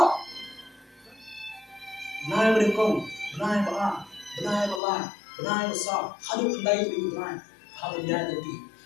Benai berengkong, benai ba, benai ba, benai sa, hadu kendai tu benai, hadu dia jadi.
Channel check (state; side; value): drops out; right; at 4.8 s